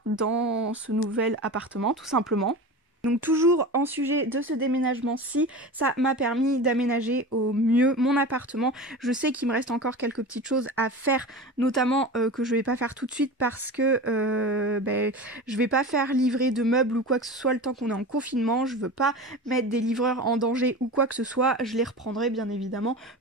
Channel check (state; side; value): normal; both; correlation 0.30